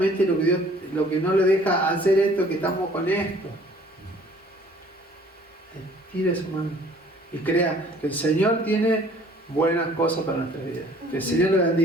lo que no le deja hacer esto, que estamos con esto. Tire su mano y crea que el Señor tiene buenas cosas para nuestra vida. Que el Señor le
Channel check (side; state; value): both; normal; correlation 0.54